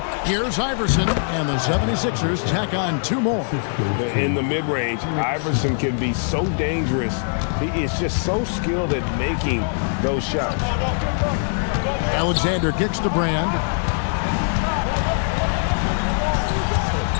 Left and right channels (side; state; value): right; silent; 64 dB below the other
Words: Here's Iverson. And the 76ers tack on 2 more. In the mid-range, Iverson can be so dangerous. He is just so skilled at making those shots. Alexander kicks to Brand.